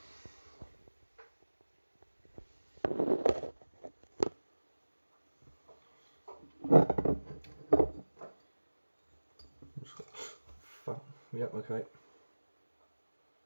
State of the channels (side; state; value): both; inverted; correlation -1.00